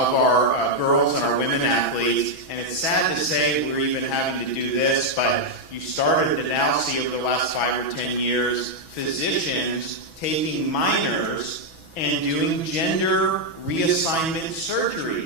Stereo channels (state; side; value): late; right; 6.1 ms